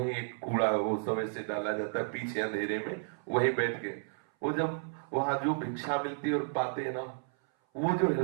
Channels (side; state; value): left; silent; 56 dB below the other